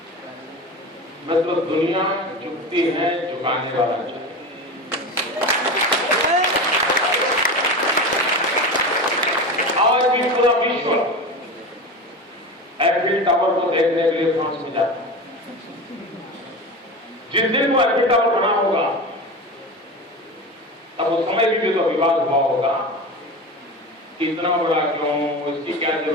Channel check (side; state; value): both; normal; correlation 0.27